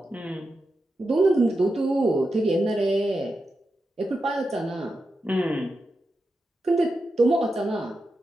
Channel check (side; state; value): both; normal; correlation 0.89